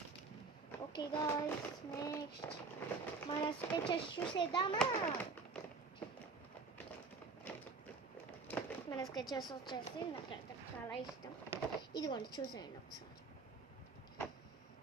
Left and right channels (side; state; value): left; quieter; 4.4 dB